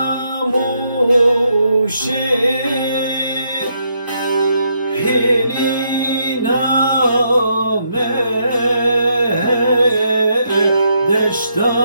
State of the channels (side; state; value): both; inverted; correlation -0.76